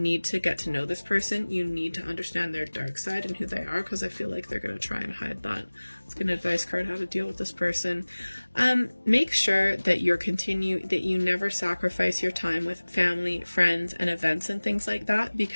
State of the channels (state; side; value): inverted; both; correlation -1.00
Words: to get to know this person. You need to understand their dark side and who they are, because I feel like they're going to try and hide that. It's an advice card, how to deal with this person. Make sure that that you never sacrifice your time with family, friends, and events and things like that,